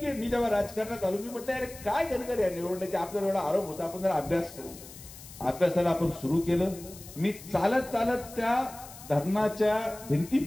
मी जेव्हा राजकारणात आलो मी म्हटलं अरे काय गणकर या निवडण्याचे आपल्याला एवढा आरोप होता, आपण जरा अभ्यास करू. अभ्यासाला आपण सुरू केलं. मी चालत चालत त्या धरणाच्या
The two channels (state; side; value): noise; left; hiss, 17 dB below the sound